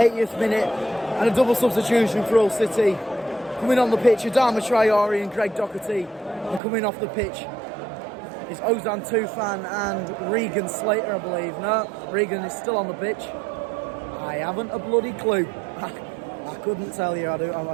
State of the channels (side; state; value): left; drops out; at 6.6 s